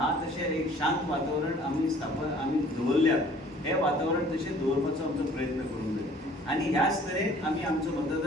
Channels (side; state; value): both; normal; correlation 0.53